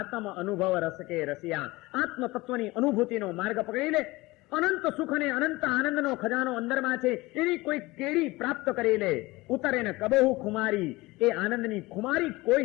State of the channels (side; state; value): right; quieter; 21.0 dB